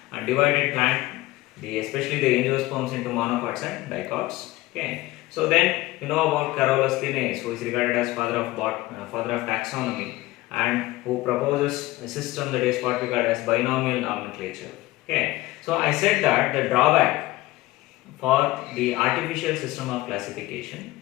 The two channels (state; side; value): quieter; right; 18.7 dB